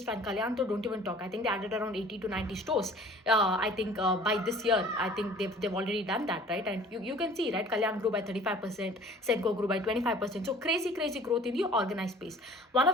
fine. Kalyan, so don't even talk. I think they added around 80 to 90 stores. I think by this year, I think they've already done that, right? And you can see, right? Kalyan grew by 35%, Senco grew by 25%. So crazy growth in the organized space. One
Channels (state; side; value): normal; both; correlation 0.49